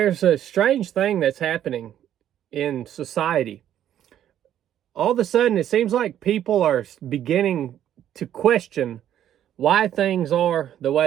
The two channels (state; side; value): quieter; left; 10.9 dB